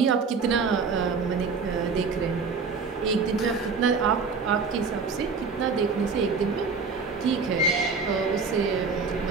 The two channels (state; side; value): quieter; left; 4.9 dB